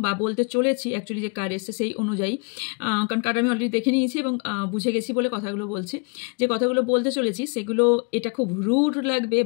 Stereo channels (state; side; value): quieter; right; 34.6 dB